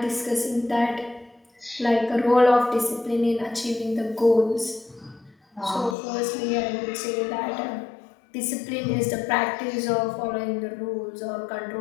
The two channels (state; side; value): drops out; right; at 6.0 s